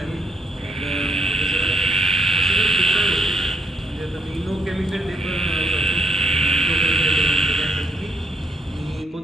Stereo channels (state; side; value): normal; both; correlation 0.73